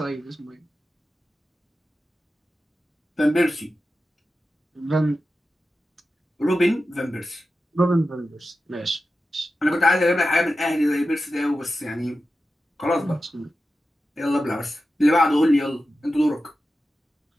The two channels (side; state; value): both; normal; correlation 0.92